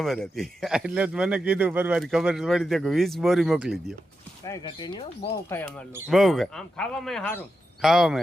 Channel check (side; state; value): both; normal; correlation 0.88